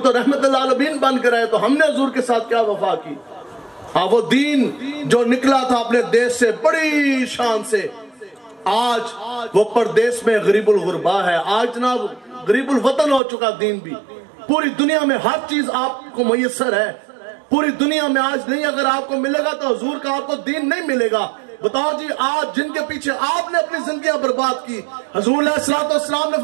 رحمت اللہ العالمین بن کر آئے تو ہم نے حضور کے ساتھ کیا وفا کی. ہاں وہ دین جو نکلا تھا اپنے دیش سے بڑی شان سے، آج وہ پردیس میں غریب الغربا ہے. آج جناب غریب الوطن ہو چکا دین بھی. پوری دنیا میں ہر چیز آپ کو میسر ہے، پوری دنیا میں آج نہیں اگر آپ کو ملے گا تو حضور کا آپ کو دین نہیں ملے گا. بتاؤ جی آج جن کے پیچھے آپ نے اپنی زندگیاں برباد کی، حضور علیہ السلام نے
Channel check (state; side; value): drops out; left; at 13.2 s